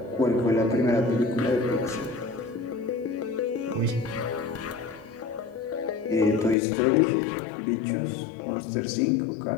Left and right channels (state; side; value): drops out; right; at 6.6 s